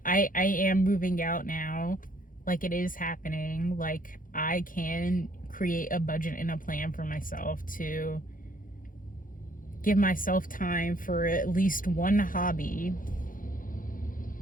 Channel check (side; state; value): right; late; 0.40 ms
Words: I am moving out now. Like, it is happening. Like, I can create a budget and a plan for myself to give myself time for at least one hobby.